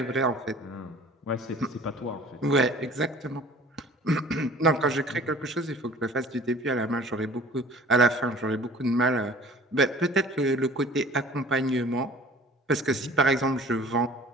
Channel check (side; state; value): both; normal; correlation 0.47